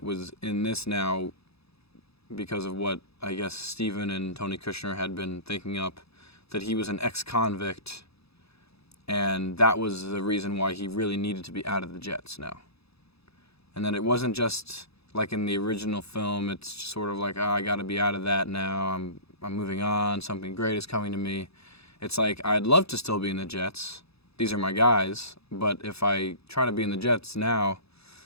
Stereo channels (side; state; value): right; late; 0.78 ms